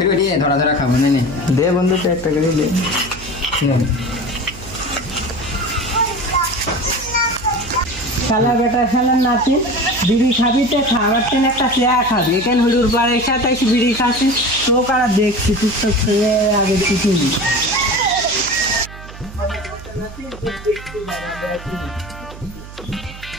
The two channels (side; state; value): right; noise; hum, 15 dB below the sound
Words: দিয়ে ধরা ধরা খাবো না। দে বন্ধু তো একটা করে দে। শালা বেটা শালার নাতিন বিড়ি খাবি তো খাবার তেন একটা চেয়া খাবি, এখানে হুড়ুর বাড়ির সাথে এসে বিড়ি খাচ্ছিস তো কারা দেখছি তুই তো খেয়ে আগে কিছু